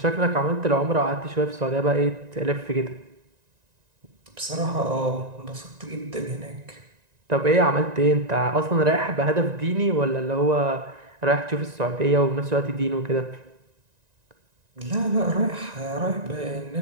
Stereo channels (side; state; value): left; late; 1.9 ms